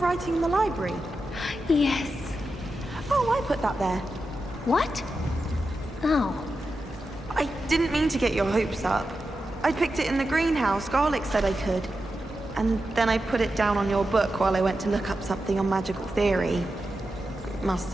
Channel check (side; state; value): both; normal; correlation 0.90